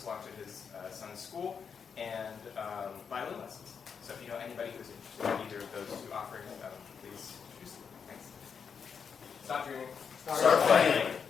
launch at his son's school, and violin lessons. So if you know anybody who's interested in either of those two offerings, please choose them. Thanks. Stop dreaming. Start playing.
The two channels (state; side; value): quieter; right; 6.5 dB